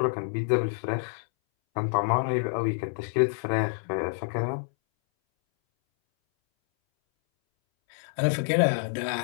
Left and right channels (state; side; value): silent; right; 60 dB below the other